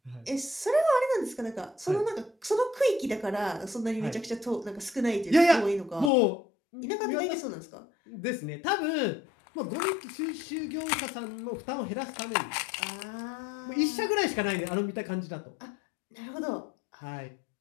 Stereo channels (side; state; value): right; drops out; at 6.1 s